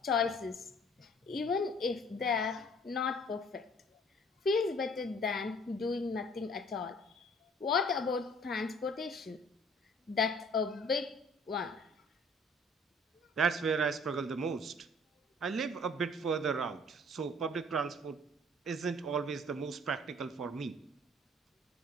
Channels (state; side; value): normal; both; correlation 0.54